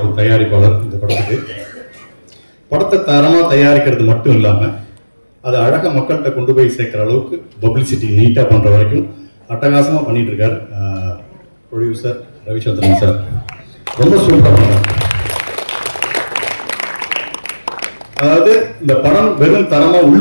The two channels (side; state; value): both; inverted; correlation -1.00